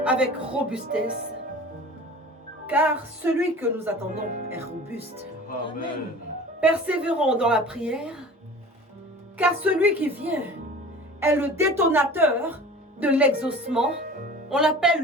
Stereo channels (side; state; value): both; normal; correlation 0.40